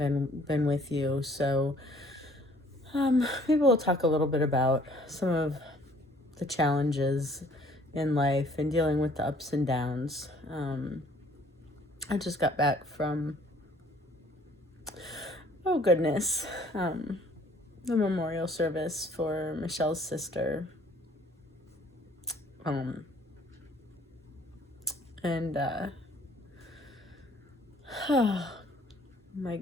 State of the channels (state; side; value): normal; both; correlation 0.58